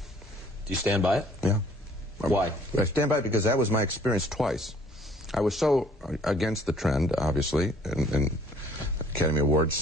Do you stand by it? Yeah. Why? I stand by it because that was my experience twice. I was so against the trend, obviously, and Academy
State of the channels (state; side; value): normal; both; correlation 0.58